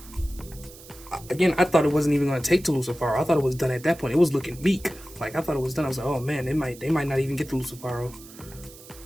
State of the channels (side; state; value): right; noise; hiss, 19 dB below the sound